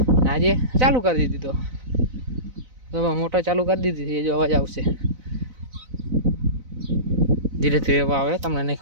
આજે ચાલુ કરી દીધો તો મોટર ચાલુ કરી દીધી છે. જો અવાજ આવશે, ધીરે ધીરે આવે, તમને નહીં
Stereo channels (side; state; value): left; late; 4.0 ms